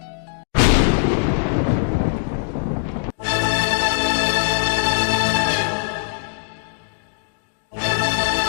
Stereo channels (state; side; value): silent; right; digital silence